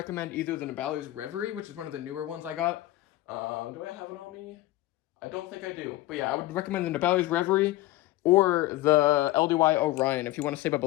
either the Nabali's Reverie, which is one of the newer ones I got. Do I have it on me? I don't think I do. But yeah, I would recommend the Nabali's Reverie or the LDY Orion. If you want to save up a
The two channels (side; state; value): right; quieter; 17.1 dB